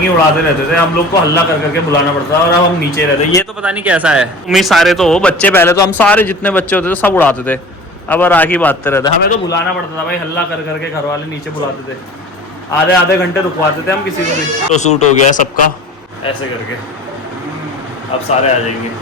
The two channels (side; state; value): both; normal; correlation 0.40